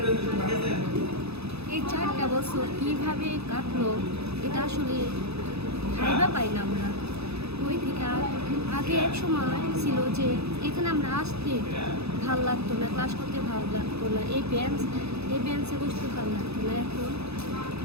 এই 4টা বছর কীভাবে কাটলো এটা আসলে ভাইবা পাই না আমরা। ওই থেকে আগে এক সময় ছিল যে এখানে আমরা আসতে ভালো লাগতো না, ক্লাস করতে ভালো লাগতো না, এই বেঞ্চে বসতে ভালো লাগতো না।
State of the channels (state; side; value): late; left; 0.79 ms